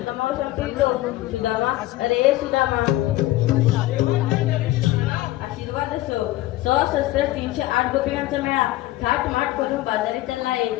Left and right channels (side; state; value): right; quieter; 16.7 dB